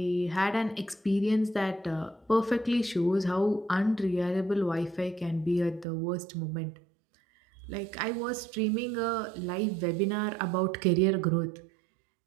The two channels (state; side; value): drops out; left; at 5.9 s